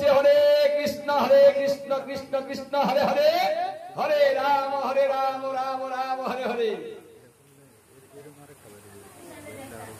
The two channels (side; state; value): both; identical; correlation 1.00